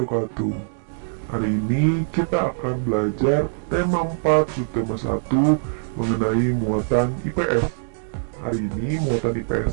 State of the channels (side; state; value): left; silent; digital silence